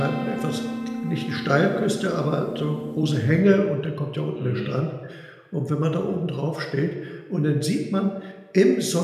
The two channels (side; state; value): both; identical; correlation 1.00